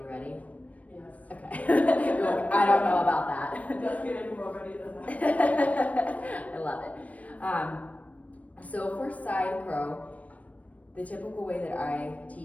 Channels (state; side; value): late; right; 0.068 ms